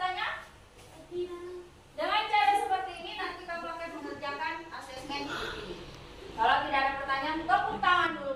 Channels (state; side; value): identical; both; correlation 1.00